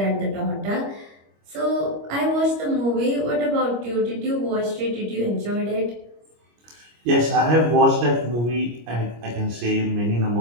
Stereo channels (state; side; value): late; left; 25 ms